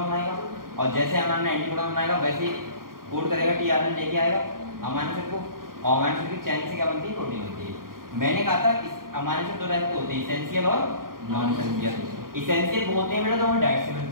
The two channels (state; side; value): late; left; 0.91 ms